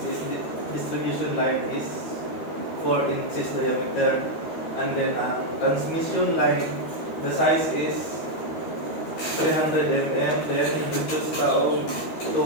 is distribution line, is 4 inches diameter. And then ang transmission line, the size is 300 mm, then reduced taong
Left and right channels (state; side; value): late; right; 13 ms